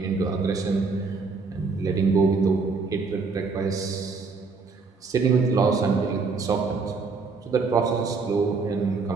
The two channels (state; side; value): quieter; left; 4.4 dB